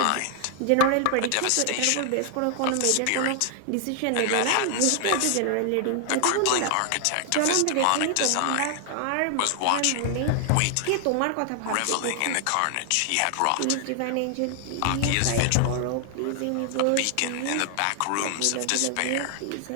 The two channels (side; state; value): both; different; correlation 0.00